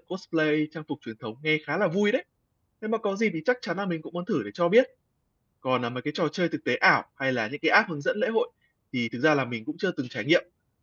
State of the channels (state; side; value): identical; both; correlation 1.00